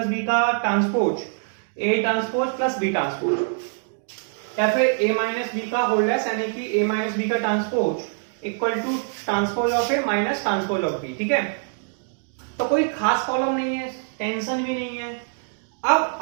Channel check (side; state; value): left; silent; digital silence